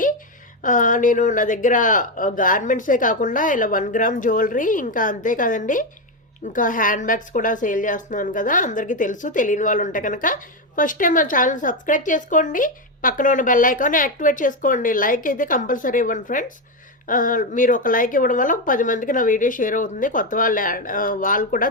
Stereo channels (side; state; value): both; normal; correlation 0.09